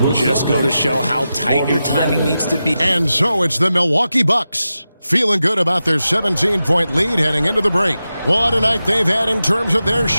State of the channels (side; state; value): both; inverted; correlation -0.92